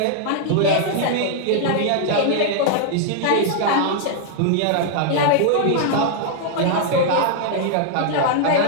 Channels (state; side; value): different; both; correlation 0.00